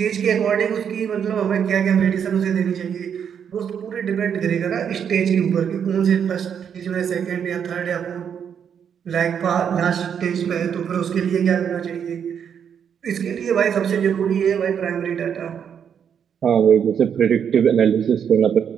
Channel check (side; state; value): left; quieter; 7.9 dB